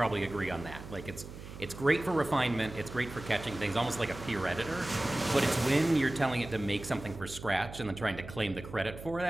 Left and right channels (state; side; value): noise; right; hum, 13 dB below the sound